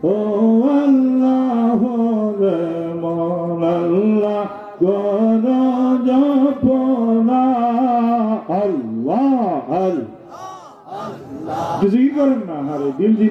ও আল্লাহ রে মন আল্লাহ গণ জপনা। আল্লাহ আল্লাহ কিছুই করেন না, আরে দিল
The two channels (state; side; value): identical; both; correlation 1.00